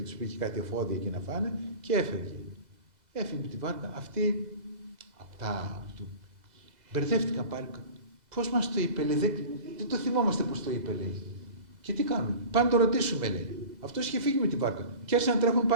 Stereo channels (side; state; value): left; late; 2.0 ms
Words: τους πήγε κάτι εφόδια εκεί να φάνε και έφευγε. Έφυγε με τη βάρκα. Αυτοί μπερδεύτηκαν πάλι. Πώς μας το είπε, λέει, δεν το θυμόμαστε πώς το είπε, λέει. Και τι κάνουμε, πάμε να το ρωτήσουμε, λέει. Αυτός είχε φύγει με τη βάρκα. Και άρχισαν να τρέχουν